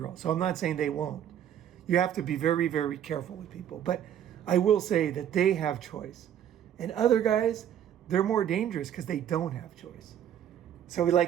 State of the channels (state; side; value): quieter; left; 10.1 dB